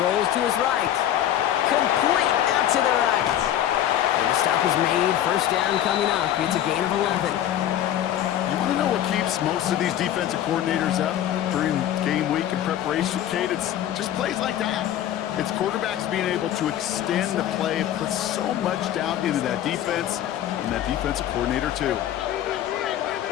rolls to his right. Complete out to the right. And the stop is made. 1st down coming up. It's a gain of 11. You want to know what keeps most of these defensive coordinators up during game week and preparation, Kate? It's just plays like that. It's quarterbacks being able to extend the play and put so much down into that defense and that defensive coordinator too.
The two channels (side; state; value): right; quieter; 11.6 dB